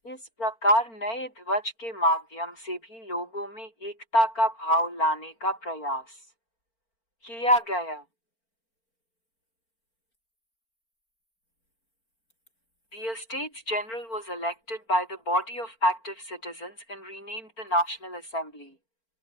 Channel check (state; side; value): late; right; 4.4 ms